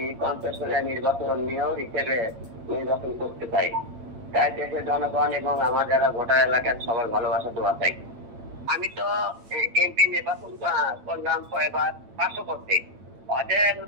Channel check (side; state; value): left; late; 8.9 ms